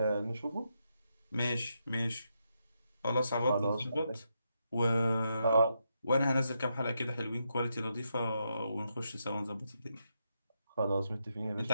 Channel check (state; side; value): inverted; both; correlation -0.82